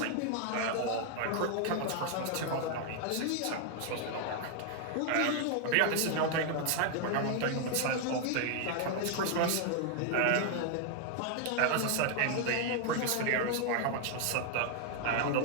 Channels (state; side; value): different; both; correlation 0.00